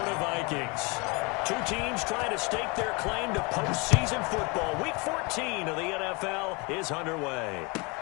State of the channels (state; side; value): quieter; right; 27.7 dB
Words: Vikings. Two teams trying to stake their claim to postseason football. Week 14 of the NFL is underway.